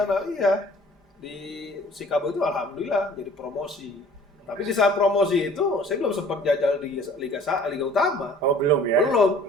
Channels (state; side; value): normal; both; correlation 0.51